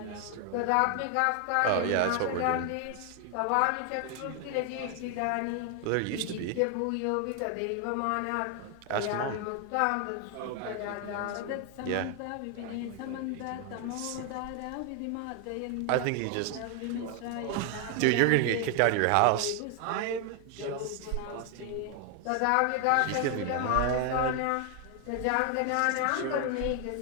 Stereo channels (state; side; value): different; both; correlation 0.00